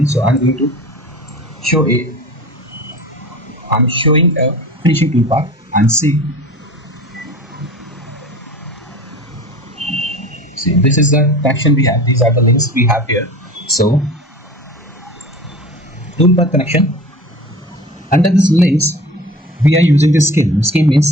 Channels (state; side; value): normal; both; correlation 0.37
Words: so I'm going to show I'm showing a finishing toolpath, and see, this is the connection we have. These are the links we have here. So toolpath connection, under these links we are using this skim. Skim